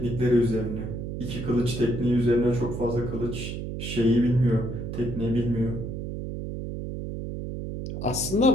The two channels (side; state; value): right; noise; hum, 6 dB below the sound